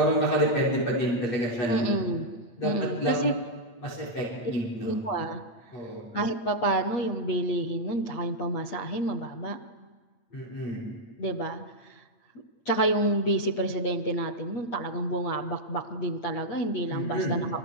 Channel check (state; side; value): late; right; 8.6 ms